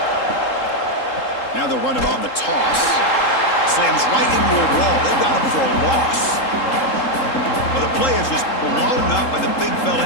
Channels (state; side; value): late; right; 3.8 ms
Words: Now they'll run it on the toss. Slams right into a wall. They got him for a loss. Well, the play is just blown up by the big fella